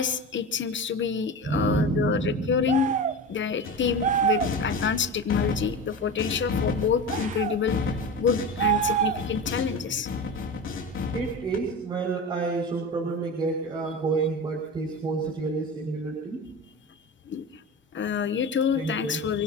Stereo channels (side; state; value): both; normal; correlation 0.27